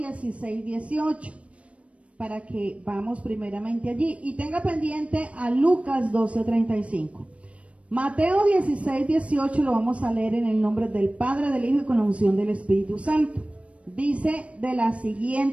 18, para que vamos primeramente allí. Y tenga pendiente a Lucas 12, 35. Mateo 16, 18 lo vamos a leer en el nombre del Padre, del Hijo y con la unción del Espíritu Santo. Dice de la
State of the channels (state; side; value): late; left; 0.063 ms